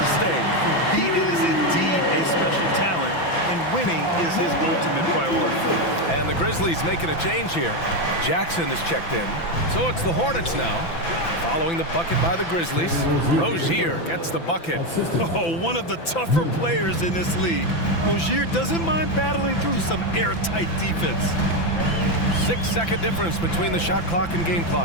stay. He is indeed a special talent, and winning is his ultimate priority. And the Grizzlies making a change here. Jackson is checked in. So it's the Hornets now. Following the bucket by the Grizzlies. Rozier gets the bucket. Oh, one of the tougher players in this league. Rozier doesn't mind battling through some airtight defense. 6-second difference between the shot clock and game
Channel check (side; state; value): right; late; 5.9 ms